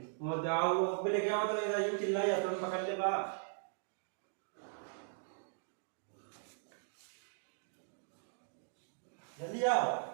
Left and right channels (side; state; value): left; silent; digital silence